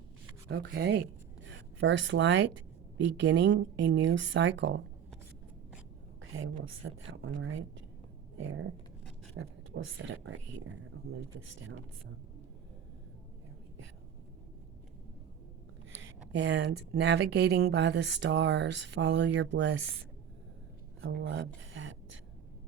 Okay. First light, beginning a new cycle. Okay, we'll set that one right there. Perfect. We'll set it right here. I'll move this down some. There we go. And navigating by the stars, follow your bliss. I love that.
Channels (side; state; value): left; quieter; 8.7 dB